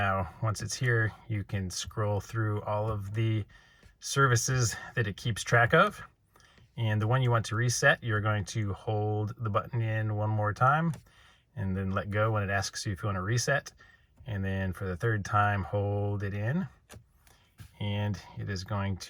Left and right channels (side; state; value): both; identical; correlation 1.00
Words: once it's here, you can scroll through all of the services that it keeps track of. And the one you want to reset, you're going to hold the button in one more time and then let go when it asks you if you want to reset. And then for the third time, hold it in, and it is going